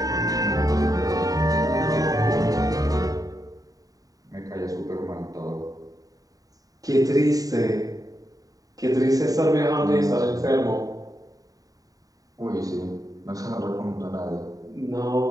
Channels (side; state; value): left; late; 0.18 ms